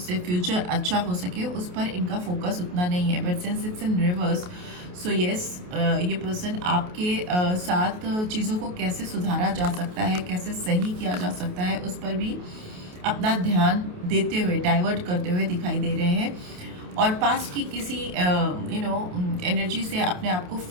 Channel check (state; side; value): late; left; 28 ms